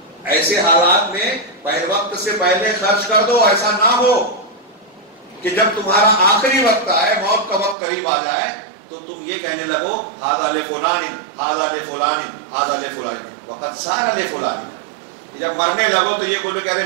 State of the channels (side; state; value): left; drops out; at 7.8 s